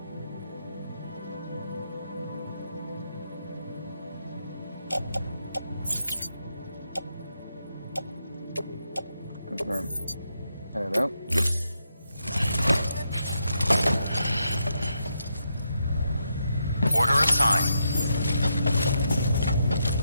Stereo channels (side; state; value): both; inverted; correlation -0.81